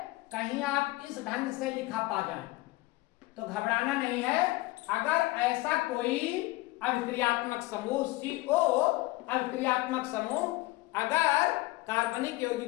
कहीं आप इस ढंग से लिखा पा जाए तो घबराना नहीं है। अगर ऐसा कोई अभिक्रियात्मक समूह CO अभिक्रियात्मक समूह अगर कार्बनिक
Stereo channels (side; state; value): right; quieter; 20.1 dB